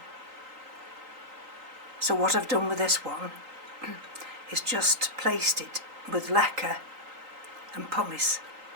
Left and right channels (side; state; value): left; late; 3.9 ms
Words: So what I've done with this one is just placed it with leca and pumice.